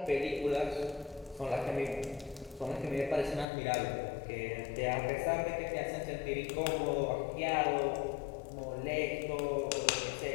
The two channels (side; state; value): right; drops out; at 3.5 s